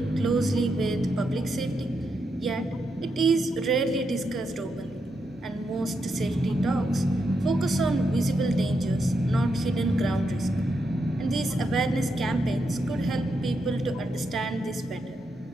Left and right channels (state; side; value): normal; both; correlation 0.83